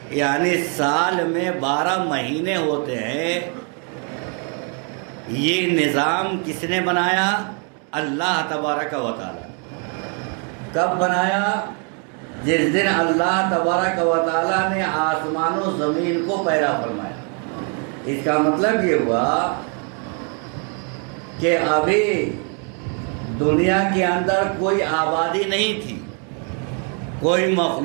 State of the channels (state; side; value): quieter; left; 39.1 dB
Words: یعنی سال میں 12 مہینے ہوتے ہیں. یہ نظام کس نے بنایا؟ اللہ تبارک و تعالیٰ. کب بنایا؟ جس دن اللہ تبارک و تعالیٰ نے آسمان و زمین کو پیدا فرمایا. اس کا مطلب یہ ہوا کہ ابھی دنیا کے اندر کوئی آبادی نہیں تھی، کوئی